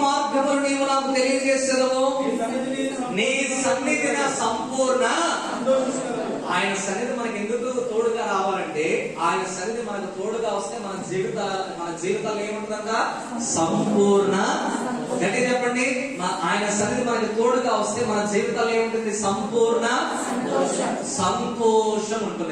మార్గములు నీవు నాకు తెలియజేసేదవు, నీ సన్నిధి నా సంపూర్ణ. ఆయన సన్నిధి మనకి ఎందుకు తోడుగా రావాలంటే, ఆయన సన్నిధి మనకు తోడుగా వస్తే మన జీవితాలు ఏముంటుందంట? సంపూర్ణ. గట్టి చెప్పండి. ఆయన సన్నిధి మనకి తోడుగా వస్తే మన జీవితాలు ఏముంటుంది? సంపూర్ణ సంతోషం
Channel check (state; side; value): identical; both; correlation 1.00